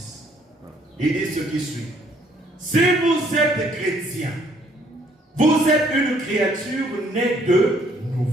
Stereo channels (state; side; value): normal; both; correlation 0.64